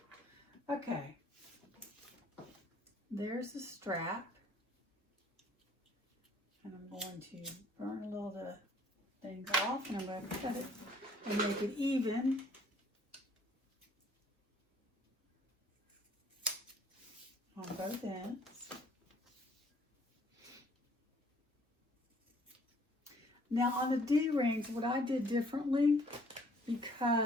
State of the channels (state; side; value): normal; both; correlation 0.59